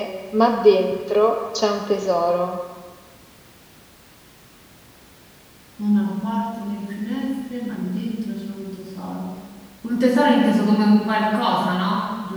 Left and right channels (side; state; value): both; identical; correlation 1.00